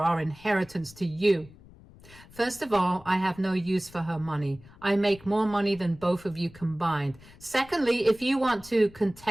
inheritance to you." "First of all, I have no use for her money. I make more money than both of you combined. Secondly, if you want to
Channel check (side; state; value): left; noise; rumble, 22 dB below the sound